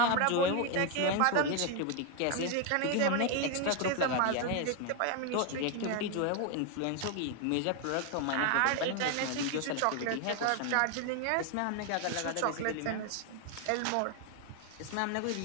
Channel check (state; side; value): different; both; correlation 0.01